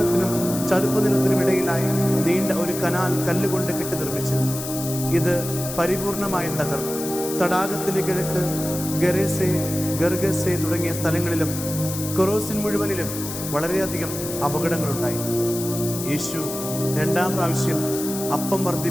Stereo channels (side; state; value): left; noise; hiss, 8 dB below the sound